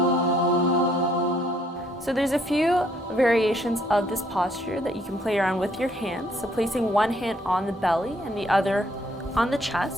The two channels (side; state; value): both; normal; correlation 0.67